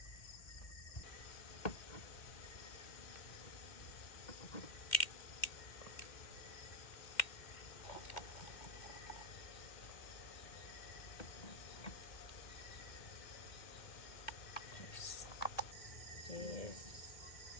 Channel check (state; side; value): late; right; 2.1 ms